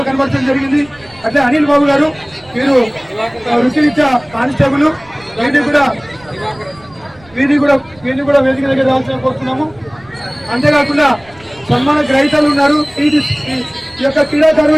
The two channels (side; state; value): right; noise; rumble, 26 dB below the sound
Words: కనబడటం జరిగింది. అట్లే అనిల్ బాబు గారు వీరు వృత్తిరీత్యా కానిస్టేబుల్ వీరిని కూడా వేదిక దగ్గర రావాల్సిన కోరుతున్నాము. అంతేకాకుండా సన్మాన గ్రహీతలు ఉన్నారు. ఈ యొక్క